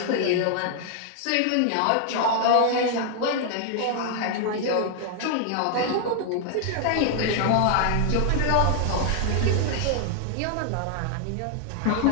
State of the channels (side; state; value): both; different; correlation 0.00